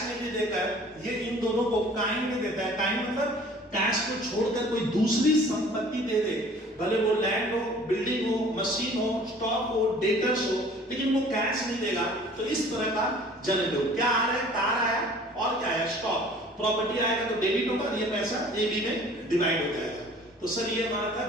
में नहीं देकर ये इन दोनों को काइंड में देता है। काइंड मतलब कैश को छोड़कर कोई दूसरी संपत्ति दे दे, भले वो लैंड हो, बिल्डिंग हो, मशीन हो, स्टॉक हो, डेटर्स हो, लेकिन वो कैश नहीं देगा। तो इस तरह का जनरल हो, क्या आ रहा है, कार आया और क्या आया, स्टॉक, प्रॉपर्टी आएगा तो डेबिट होगा, ये पैसा ए बी में डिवाइड हो जाएगा। तो सर ये हमारा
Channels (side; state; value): both; normal; correlation 0.50